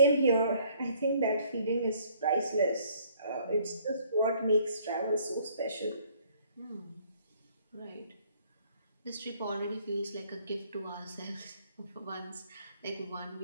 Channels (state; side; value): inverted; both; correlation -0.61